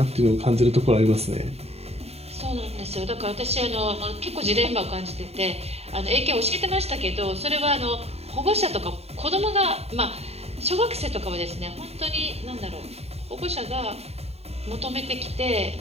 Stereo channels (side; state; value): left; late; 0.30 ms